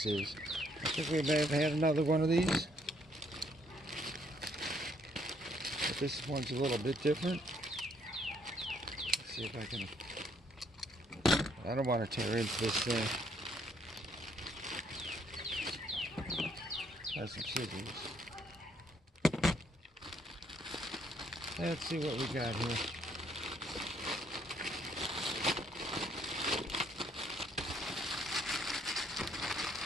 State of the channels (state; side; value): normal; both; correlation 0.68